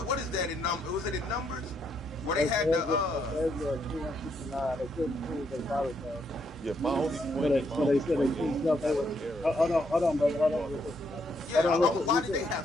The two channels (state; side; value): normal; both; correlation 0.75